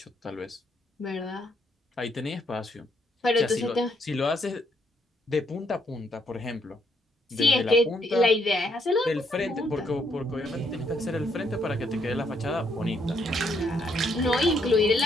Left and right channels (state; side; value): normal; both; correlation 0.73